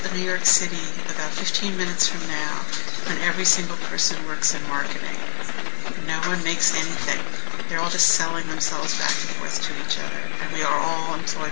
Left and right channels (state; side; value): silent; right; digital silence